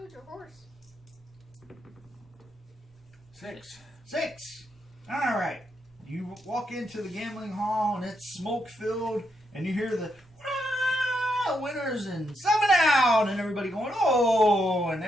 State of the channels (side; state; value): both; normal; correlation 0.80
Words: your horse. 6. 6. All right. You walk into the gambling hall and it's smoke filled, and you hear the winners and 7 out, and everybody going oh, and